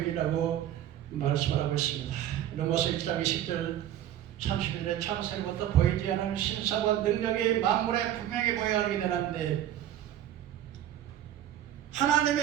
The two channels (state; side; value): quieter; left; 11.7 dB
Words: 말씀하고 있습니다. 로마서 1장 20절 30절에 창세로부터 보이지 않은 신사와 능력이 만물에 분명히 보여야 하게 되는데